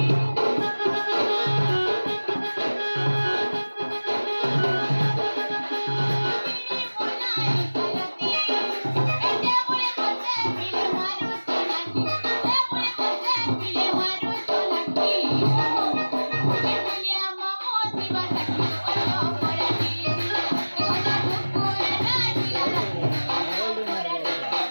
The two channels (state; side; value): inverted; both; correlation -1.00